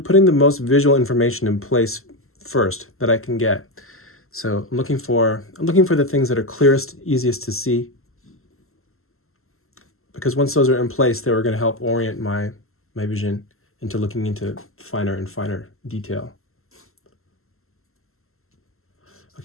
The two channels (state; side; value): late; right; 0.62 ms